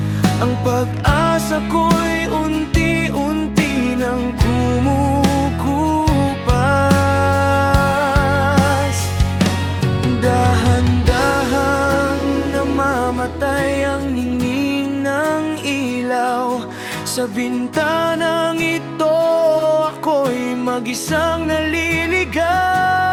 ang pag-asa ko'y unti-unti nang kumukupas. Dahan-dahang namamatay ang ningning ng ilaw. Sa bintanang ito ako'y mag-isang naliligaw.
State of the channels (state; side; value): identical; both; correlation 1.00